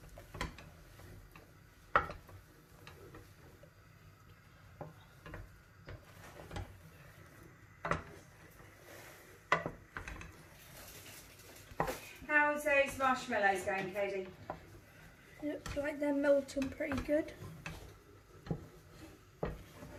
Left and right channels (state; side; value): identical; both; correlation 1.00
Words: How's those marshmallows going, Cody? Looks like they're melting pretty good.